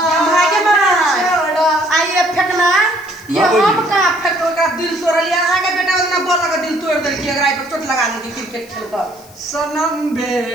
भागे बना छोड़ा आइए फेंकना ये बाबूजी। हम का फेंको का दिल तोड़ लिया आगे बेटा उतना बोल लगा दिल तोड़ दे कि अगर आई पर चोट लगा दी क्रिकेट खेल कर सनम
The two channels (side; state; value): left; noise; hiss, 24 dB below the sound